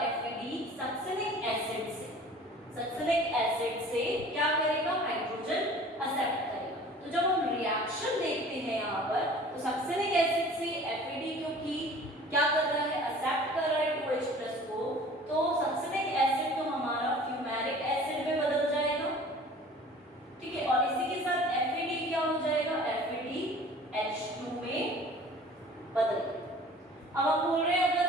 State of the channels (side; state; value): both; normal; correlation 0.46